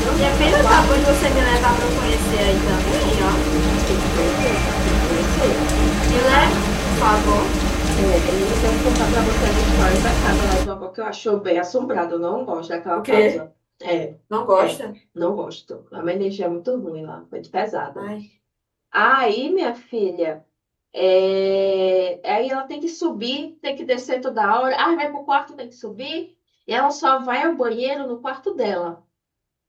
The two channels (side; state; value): both; identical; correlation 1.00